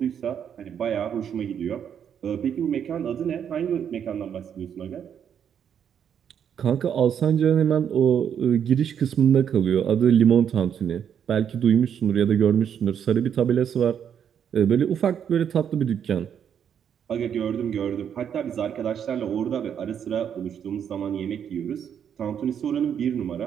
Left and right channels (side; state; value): left; quieter; 8.4 dB